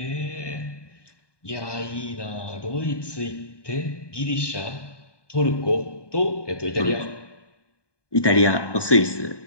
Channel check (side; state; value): right; late; 1.2 ms